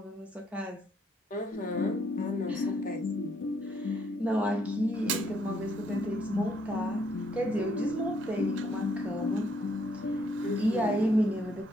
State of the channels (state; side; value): normal; both; correlation 0.70